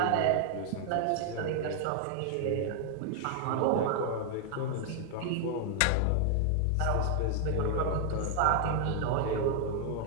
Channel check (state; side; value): different; both; correlation 0.00